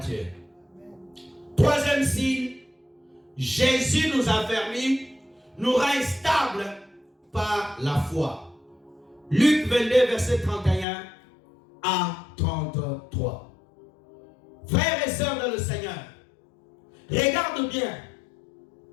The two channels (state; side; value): drops out; right; at 10.9 s